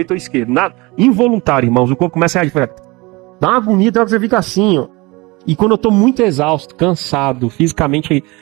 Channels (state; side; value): quieter; left; 24.1 dB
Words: ou esquerdo, involuntário, irmãos, o corpo começa a reagir, dá uma agonia, você fica assim, ó. E quando eu tô muito exausto, cansado, fisicamente